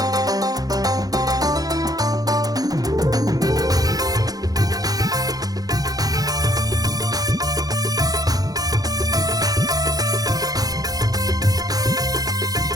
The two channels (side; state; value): left; late; 0.18 ms